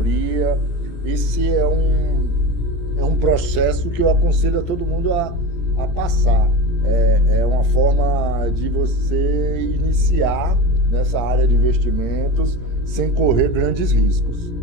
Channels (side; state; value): right; late; 17 ms